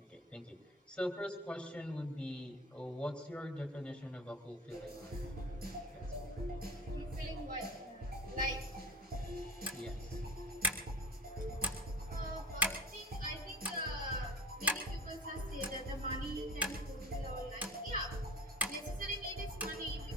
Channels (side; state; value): both; normal; correlation 0.36